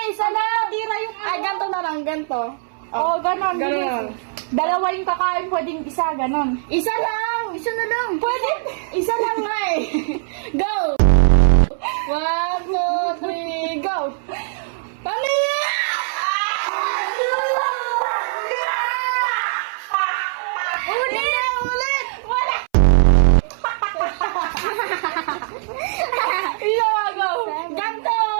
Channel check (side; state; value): left; silent; 61 dB below the other